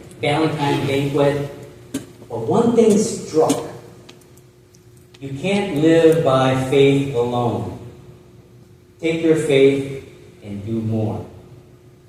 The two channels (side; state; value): both; identical; correlation 1.00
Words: Valentine's banquet. But one thing struck. You can't live by faith alone. Take your faith and do more.